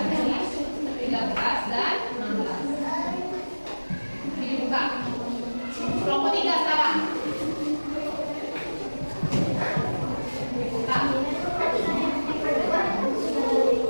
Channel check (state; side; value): inverted; both; correlation -1.00